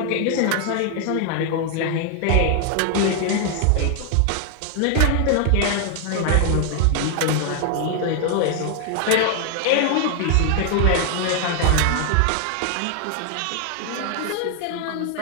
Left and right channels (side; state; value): both; different; correlation 0.00